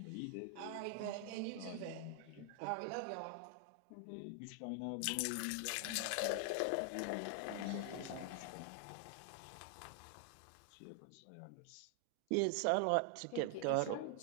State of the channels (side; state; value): both; different; correlation 0.00